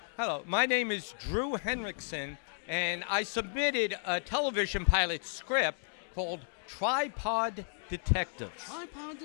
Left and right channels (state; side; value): silent; right; digital silence